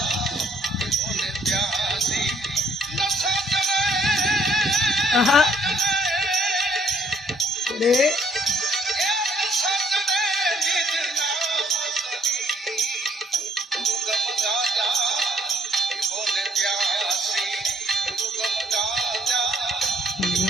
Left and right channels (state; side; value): normal; both; correlation 0.64